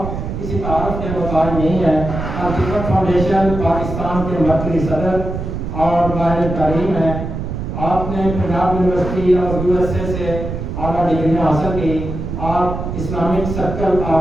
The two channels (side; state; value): right; noise; rumble, 5 dB below the sound